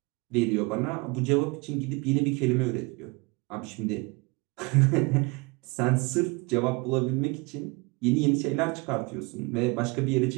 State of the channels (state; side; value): quieter; left; 27.2 dB